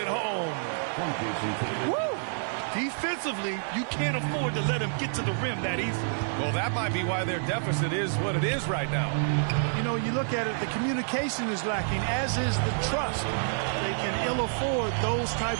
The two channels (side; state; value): left; silent; digital silence